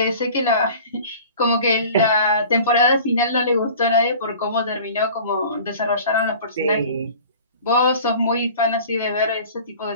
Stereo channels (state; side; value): inverted; both; correlation -0.43